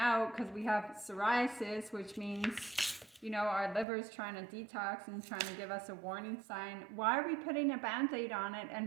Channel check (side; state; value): left; drops out; at 3.9 s